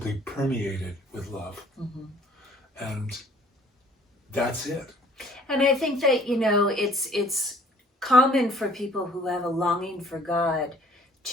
permeated with love. And that's it. And I think that, you know, it's common for people who have a longing for God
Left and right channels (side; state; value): both; normal; correlation 0.56